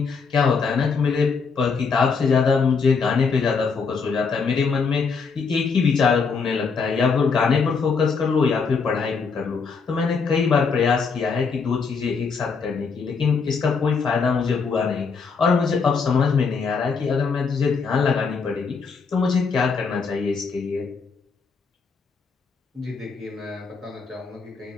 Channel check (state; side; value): quieter; right; 5.2 dB